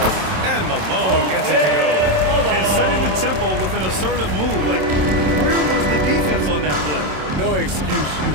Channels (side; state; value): left; late; 27 ms